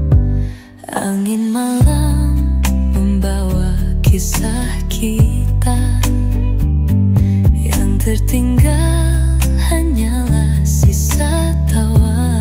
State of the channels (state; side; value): identical; both; correlation 1.00